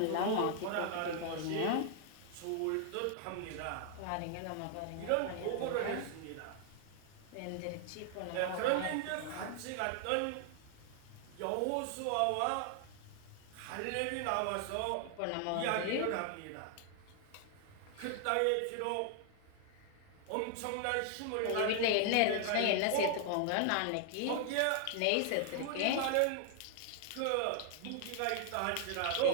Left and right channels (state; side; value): different; both; correlation 0.00